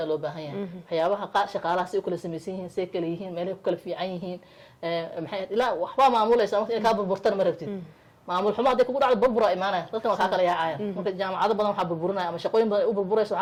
loo baahan yahay waxyaabaha shaqaalaha si kala sameeyeen kala yihiin meelay ku kala fiican yihiin maxay ilaa waxba maamulaysa marka ka burburtan ma rabtid maamul xumo hadii kugu dhacdo burbura imaanaya dadka waxa kala yaacayaan marka jaamacado badan waxa burburinaya ama shaqooyin badan u burburayso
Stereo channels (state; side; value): identical; both; correlation 1.00